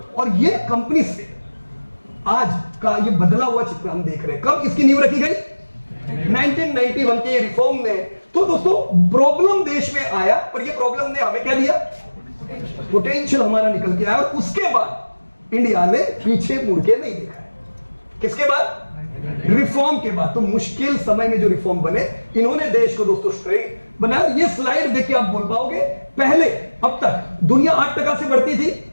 और ये कंपनी से आज का ये बदला हुआ चित्र हम देख रहे हैं। कब इसकी नींव रखी गई? 1991 के रिफॉर्म में। तो दोस्तों प्रॉब्लम देश में आया, पर ये प्रॉब्लम ने हमें क्या दिया? पोटेंशियल हमारा निकल के आया। और उसके बाद इंडिया ने पीछे मुड़ के नहीं देखा है। किसके बाद? रिफॉर्म के बाद। तो मुश्किल समय में जो रिफॉर्म बने, इन्होंने देश को दोस्तों स्ट्रेट बनाया। ये स्लाइड देख के आप बोल पाओगे, पहले अब तक दुनिया 8% से बढ़ती थी,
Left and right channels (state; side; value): inverted; both; correlation -1.00